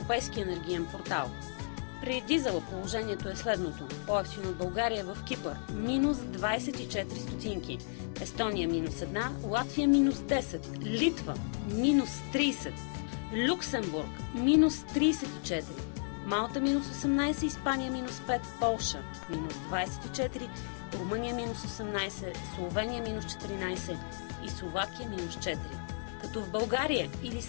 енергиен портал. При дизела положението е следното. По-евтино в България в Кипър минус 24 стотинки, Естония минус 1, Латвия минус 10, Литва минус 30, Люксембург минус 34, Малта минус 18, Испания минус 5, Полша минус 24, Румъния минус 18, Словения минус 14 и Словакия минус 4. Като в България или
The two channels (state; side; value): silent; right; digital silence